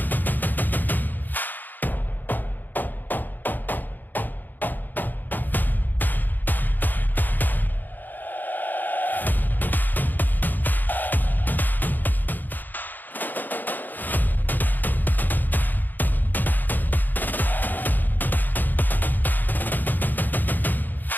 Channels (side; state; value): right; late; 0.087 ms